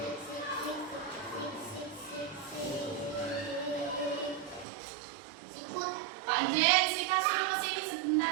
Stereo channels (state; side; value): drops out; left; at 4.7 s